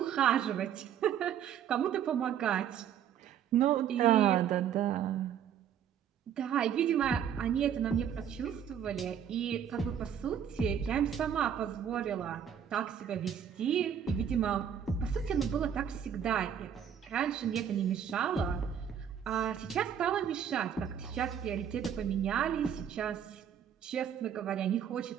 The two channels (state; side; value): quieter; left; 8.8 dB